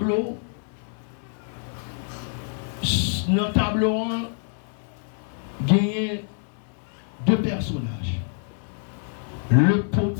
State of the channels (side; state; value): right; silent; 61 dB below the other